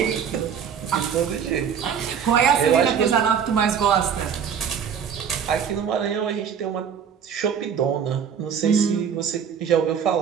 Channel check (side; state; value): left; quieter; 7.6 dB